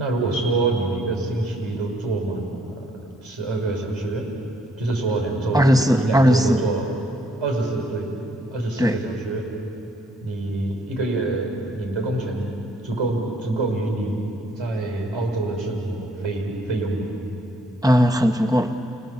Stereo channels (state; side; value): normal; both; correlation 0.68